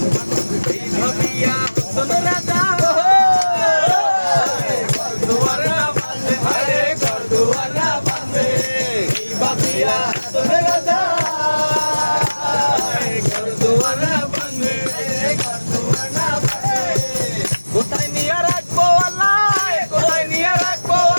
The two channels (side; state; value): both; inverted; correlation -1.00